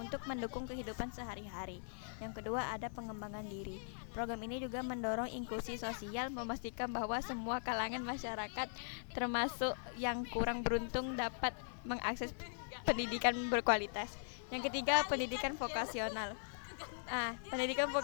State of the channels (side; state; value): right; silent; digital silence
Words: mendukung kehidupan sehari-hari. Yang kedua ada pengembangan diri. Program ini juga mendorong inklusi sosial, memastikan bahwa semua kalangan masyarakat, termasuk yang kurang beruntung, dapat mengakses pendidikan berkualitas. Yang ketiga, pendidikan vokasional. Pendidikan